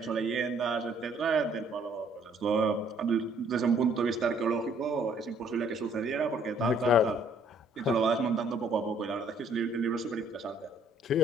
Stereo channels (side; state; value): both; normal; correlation 0.62